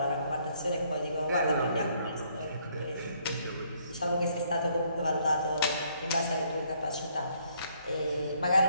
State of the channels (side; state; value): both; inverted; correlation -0.67